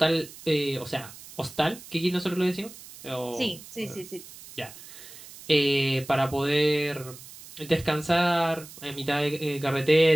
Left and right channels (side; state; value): right; noise; hiss, 17 dB below the sound